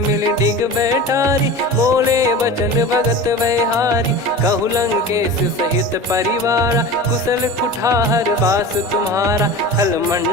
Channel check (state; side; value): normal; both; correlation 0.33